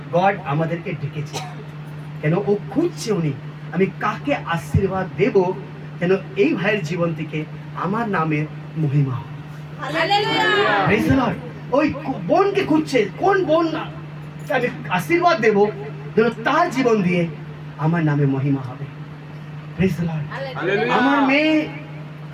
গড আমাদেরকে ডেকেছে, কেন ও খুঁজছে উনি আমি কাকে আশীর্বাদ দেব, যেন এই ভাইয়ের জীবন থেকে আমার নামের মহিমা হয়। Praise the Lord. ওই বোনকে খুঁজছে, কোন বোন আমি আশীর্বাদ দেব যেন তার জীবন দিয়ে আমার নামে মহিমা হবে। Praise the Lord. আমার মেয়ে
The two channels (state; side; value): identical; both; correlation 1.00